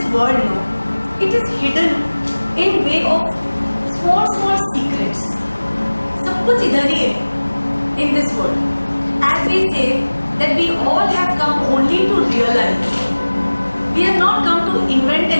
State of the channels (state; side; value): inverted; both; correlation -1.00